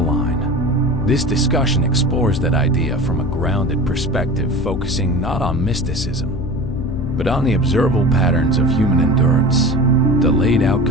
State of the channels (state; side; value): noise; left; hum, 7 dB below the sound